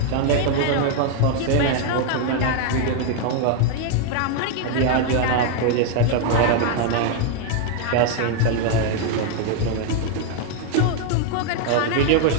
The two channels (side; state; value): both; different; correlation 0.00